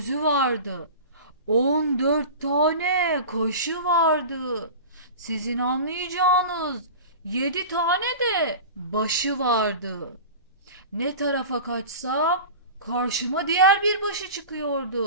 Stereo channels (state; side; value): inverted; both; correlation -0.33